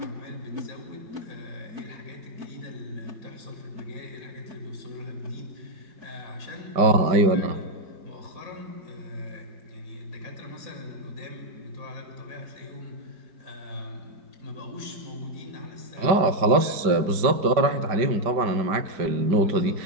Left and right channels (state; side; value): late; left; 5.1 ms